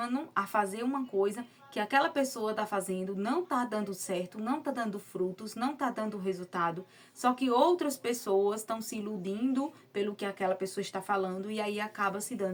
a fazer uma coisa que aquela pessoa tá fazendo, não tá dando certo, não tá dando frutos, não tá dando resultado. Só que outras pessoas estão se iludindo pelo que aquela pessoa está falando e aí acaba se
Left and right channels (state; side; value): identical; both; correlation 1.00